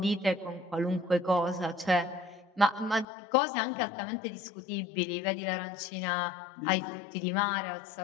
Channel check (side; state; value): right; drops out; at 3.1 s